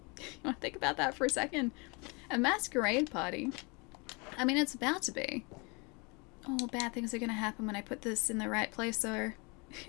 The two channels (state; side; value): quieter; right; 29.8 dB